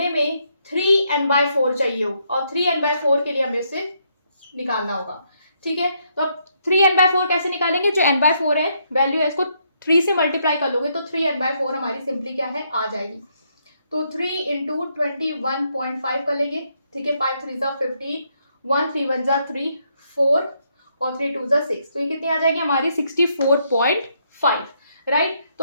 में 3n/4 चाहिए हो, और 3n/4 के लिए हमें उसे निकालना होगा, ठीक है। तो अब 3n/4 कैसे निकालेंगे, जो n/4 है वैल्यू है इसको 3 से मल्टीप्लाई कर लोगे तो 3n/4 हमारी सिंपली क्या है आ जाएगी। तो 3 इंटू 21.5 कर लेंगे, ठीक है, 5 3 ज़ा 15, 1 3 1 ज़ा 3 4, और 3 2 ज़ा 6, तो ये कितनी आ जाएगी हमारी 64.5, राइट।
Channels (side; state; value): both; inverted; correlation -0.75